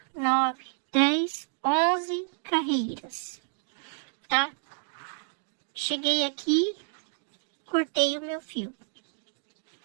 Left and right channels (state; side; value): silent; left; digital silence